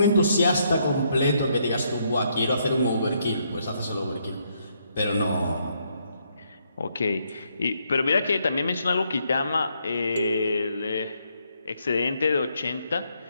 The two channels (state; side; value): inverted; both; correlation -0.74